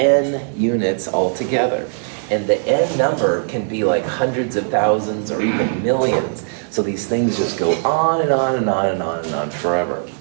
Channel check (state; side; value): silent; left; digital silence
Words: units altogether. And the N number can be like hundreds of thousands or even millions. So these things just go on and on and on and on and on forever.